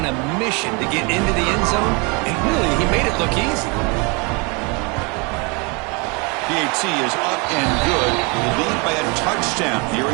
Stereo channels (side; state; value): left; quieter; 30.5 dB